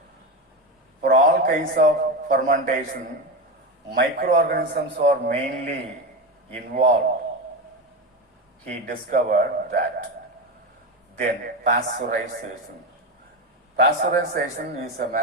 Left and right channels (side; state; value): both; normal; correlation 0.18